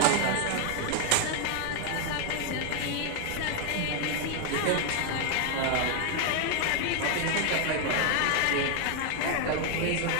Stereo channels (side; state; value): both; different; correlation 0.00